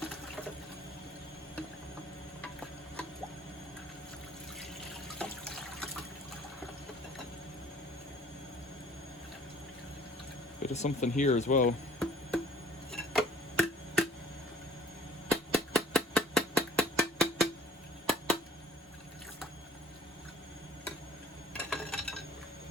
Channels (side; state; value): both; normal; correlation 0.53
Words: Bit of something here as well.